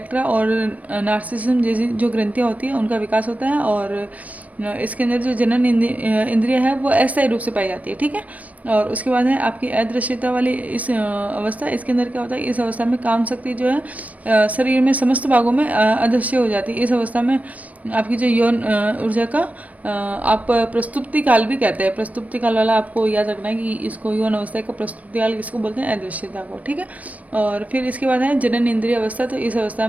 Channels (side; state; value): left; late; 0.072 ms